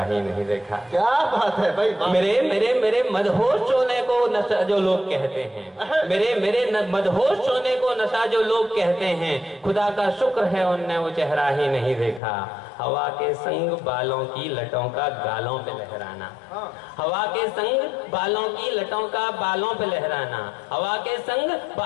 नहीं देखा। क्या बात है भाई, मेरे मदहोश होने को नशा जो लोग कहते हैं, मेरे मदहोश होने को नशा जो लोग कहते हैं, खुदा का शुक्र है उनने वो चेहरा ही नहीं देखा। हवा के संग बालों की लटों का गालों पे लहराना, हवा के संग बालों की लटों का बालों पे लहराना, हवा के संग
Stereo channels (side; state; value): right; drops out; at 12.2 s